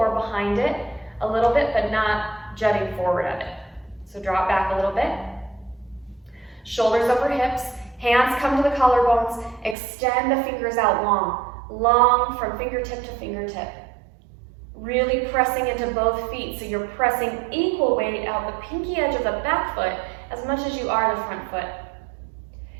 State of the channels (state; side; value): drops out; left; at 9.8 s